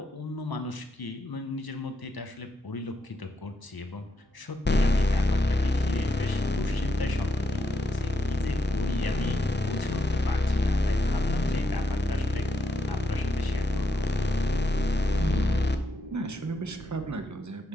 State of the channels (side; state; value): both; normal; correlation 0.81